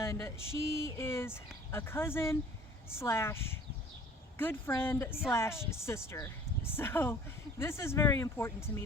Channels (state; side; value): normal; both; correlation 0.50